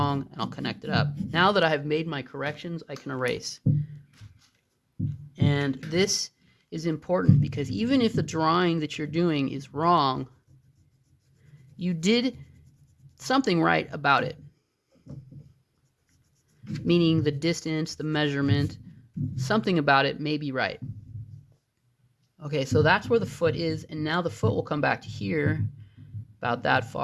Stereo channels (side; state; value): both; identical; correlation 1.00